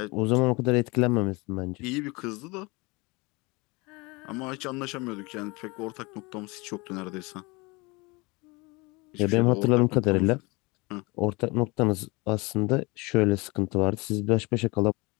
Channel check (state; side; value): quieter; right; 25.9 dB